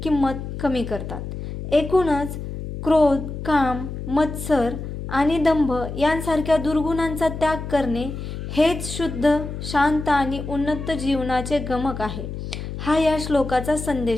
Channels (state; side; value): noise; left; hum, 7 dB below the sound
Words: किंमत कमी करतात। एकूणच क्रोध, काम, मत्सर आणि दंभ यांसारख्या दुर्गुणांचा त्याग करणे हेच शुद्ध, शांत आणि उन्नत जीवनाचे गमक आहे। हा या श्लोकाचा